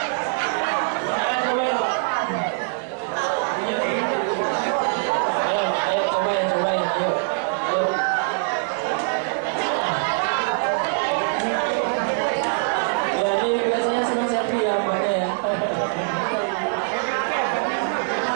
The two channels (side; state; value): left; silent; 57 dB below the other